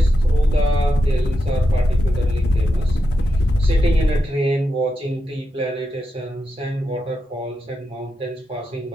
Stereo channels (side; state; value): both; normal; correlation 0.87